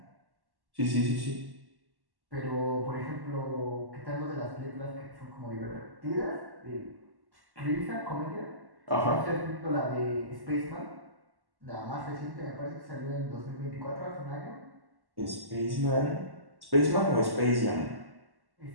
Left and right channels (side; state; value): left; late; 1.1 ms